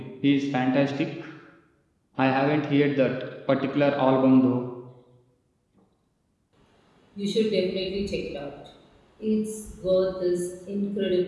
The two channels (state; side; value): identical; both; correlation 1.00